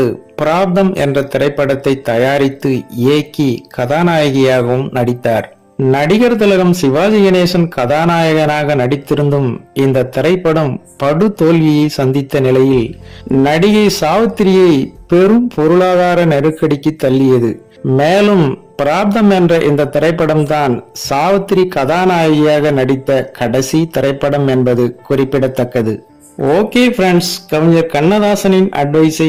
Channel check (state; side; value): identical; both; correlation 1.00